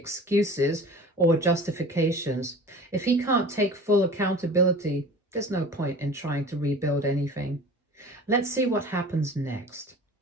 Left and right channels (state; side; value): normal; both; correlation 0.40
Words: or justifications. If he can't take full accountability, there's no point in trying to rebuild anything. Let's see what happens next.